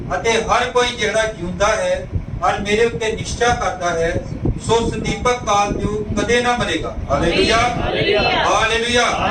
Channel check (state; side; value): identical; both; correlation 1.00